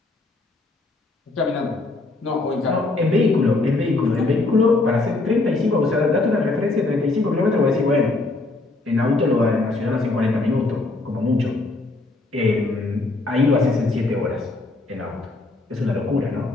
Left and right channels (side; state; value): right; quieter; 3.2 dB